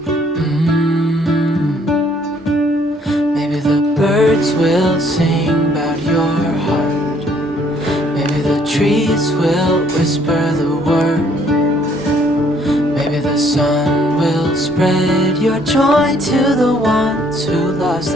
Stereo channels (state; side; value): normal; both; correlation 0.64